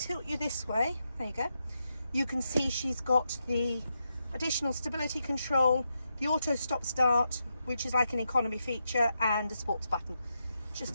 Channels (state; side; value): inverted; both; correlation -0.85